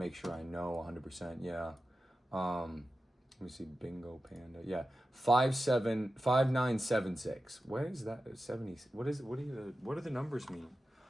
sure I know 100%. Yeah. Let me see. Bingo Panda. Yeah. 5976. What is that? 70. What do the numbers mean?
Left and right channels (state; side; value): normal; both; correlation 0.93